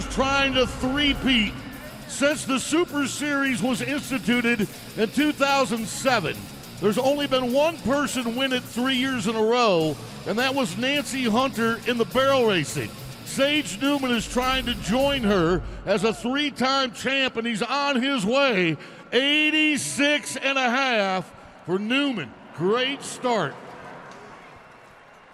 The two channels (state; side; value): identical; both; correlation 1.00